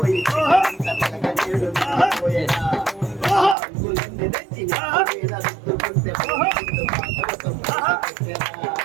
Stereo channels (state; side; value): drops out; left; at 3.6 s